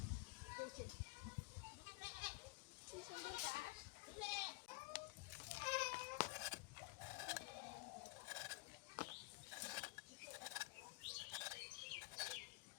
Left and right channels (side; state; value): right; quieter; 23.5 dB